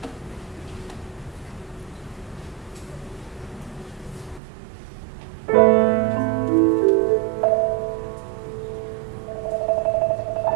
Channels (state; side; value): drops out; left; at 4.4 s